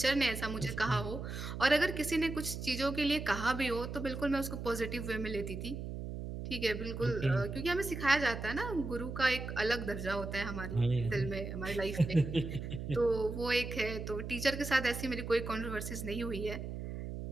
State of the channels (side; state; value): right; noise; hum, 6 dB below the sound